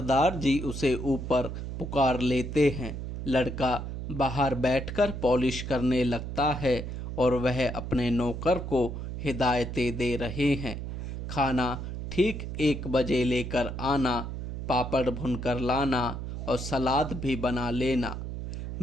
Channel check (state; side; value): noise; right; hum, 6 dB below the sound